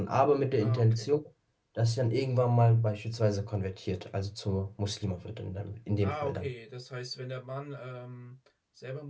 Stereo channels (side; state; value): both; identical; correlation 1.00